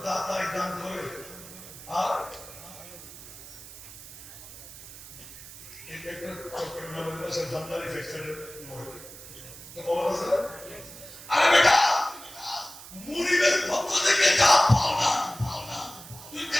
দাতাই দান করে আর একটা চট্টগ্রামের পাশে জামদানি ফ্যাক্টরি তো খবর আছে। আরে বেটা মুরিদের পক্ষ থেকে যা পাও না তুই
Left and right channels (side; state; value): right; noise; hiss, 15 dB below the sound